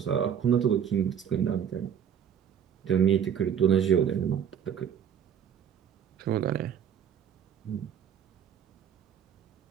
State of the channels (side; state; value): left; quieter; 8.5 dB